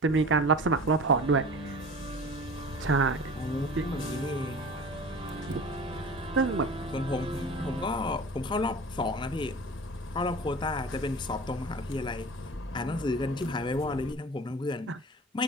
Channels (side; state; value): both; normal; correlation 0.39